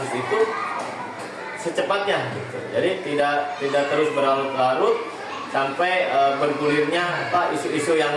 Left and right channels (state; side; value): identical; both; correlation 1.00